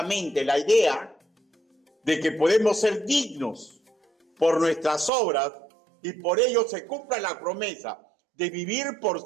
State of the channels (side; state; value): left; drops out; at 5.1 s